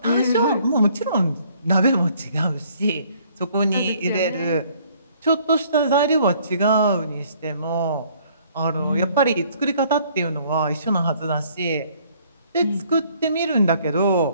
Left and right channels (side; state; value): both; inverted; correlation -0.61